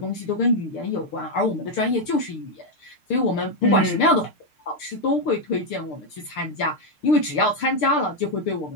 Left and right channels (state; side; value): late; right; 6.6 ms